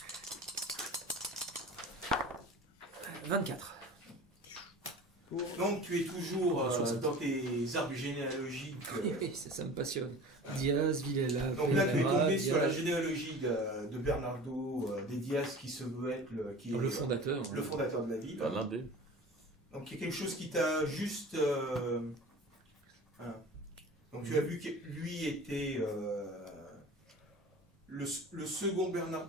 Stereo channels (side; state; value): both; normal; correlation 0.39